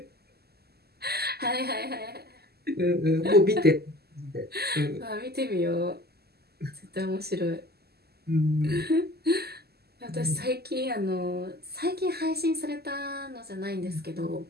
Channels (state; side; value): late; left; 0.46 ms